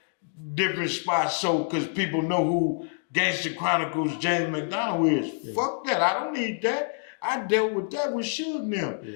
different spots so because people know who Gangster Chronicles James McDonald is. Yeah. Fuck that. I don't need that. I dealt with that with Suge now. Yeah.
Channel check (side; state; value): right; quieter; 38.1 dB